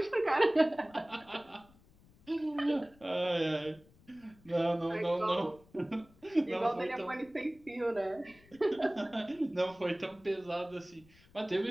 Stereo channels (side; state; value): left; noise; rumble, 27 dB below the sound